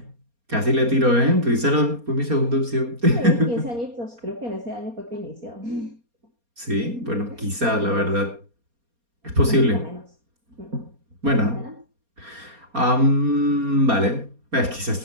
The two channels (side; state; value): left; late; 4.2 ms